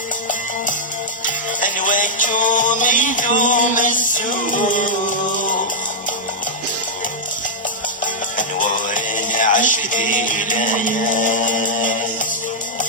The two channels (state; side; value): normal; both; correlation -0.07